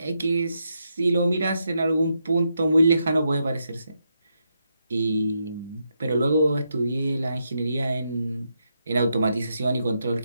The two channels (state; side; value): inverted; both; correlation -0.82